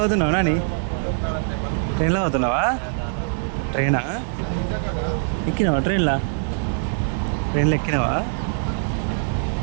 నాని? ట్రైన్లో అవుతున్నావా? ట్రైనా ఎక్కినావా? ట్రైన్లో ఎక్కినావా?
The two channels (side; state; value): left; silent; digital silence